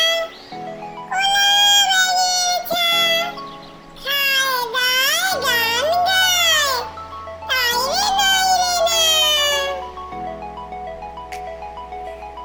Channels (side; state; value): both; identical; correlation 1.00